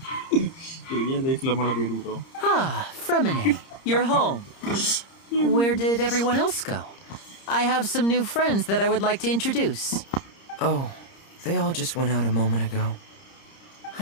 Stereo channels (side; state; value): right; late; 30 ms